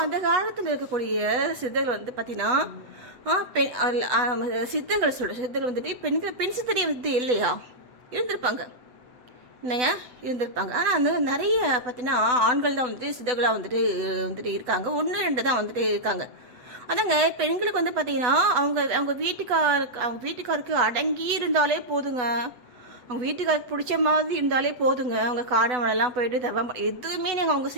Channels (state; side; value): late; left; 8.1 ms